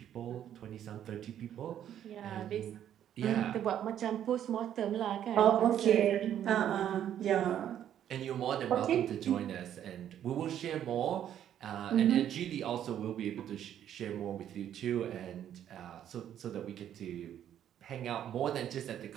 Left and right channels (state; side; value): quieter; left; 10.4 dB